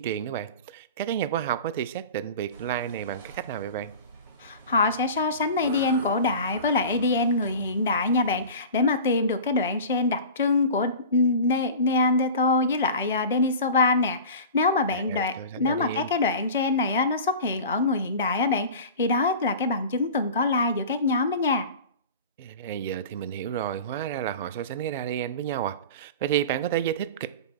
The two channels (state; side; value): inverted; both; correlation -0.35